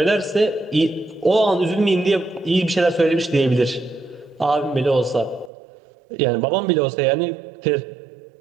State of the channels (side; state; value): left; drops out; at 5.5 s